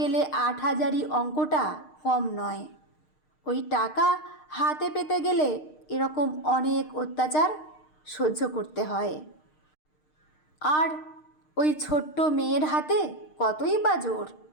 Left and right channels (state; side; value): late; right; 6.5 ms